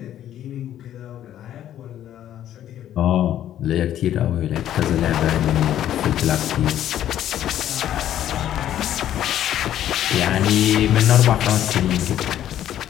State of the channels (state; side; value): quieter; right; 11.5 dB